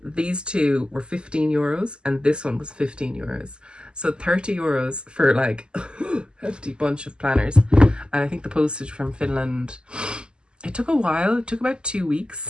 these two were €15 and this one was €15. So €30 for like a hefty bunch of planners. And I think the postage from Finland, it took a while. It took about 2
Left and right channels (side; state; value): left; late; 0.049 ms